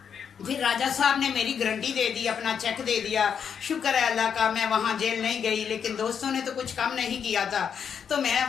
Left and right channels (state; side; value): quieter; right; 7.4 dB